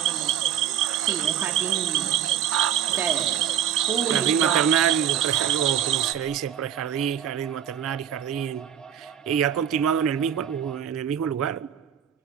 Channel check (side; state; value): left; quieter; 9.5 dB